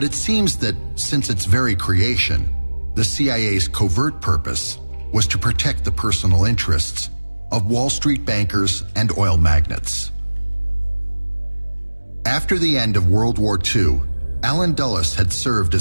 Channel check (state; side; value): inverted; both; correlation -1.00